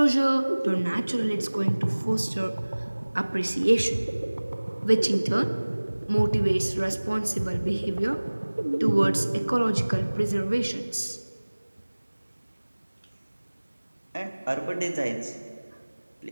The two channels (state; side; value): inverted; both; correlation -1.00